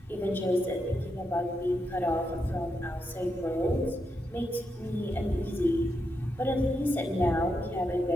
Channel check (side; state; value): both; normal; correlation 0.84